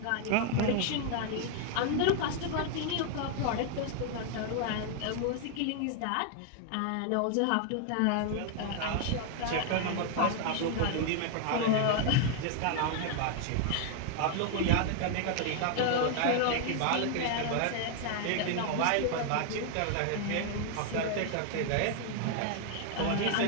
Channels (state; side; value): different; both; correlation 0.00